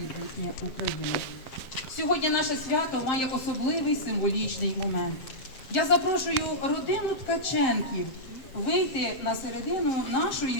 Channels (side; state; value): right; late; 7.6 ms